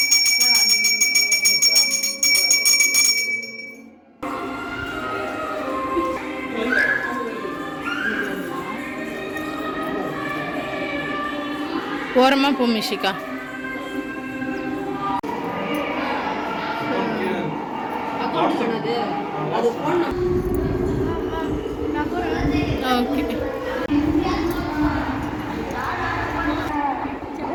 ஓரமாக போ மிஷிகா. ஓகே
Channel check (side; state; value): both; identical; correlation 1.00